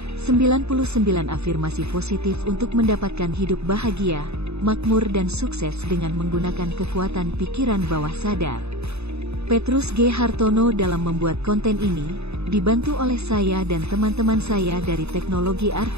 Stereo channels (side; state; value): left; late; 0.80 ms